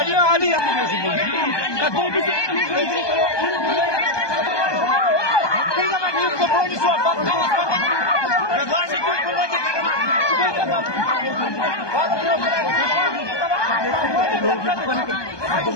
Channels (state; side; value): late; right; 1.2 ms